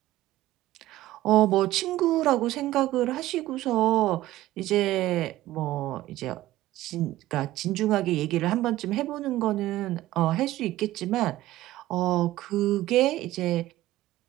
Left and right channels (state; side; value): quieter; left; 15.6 dB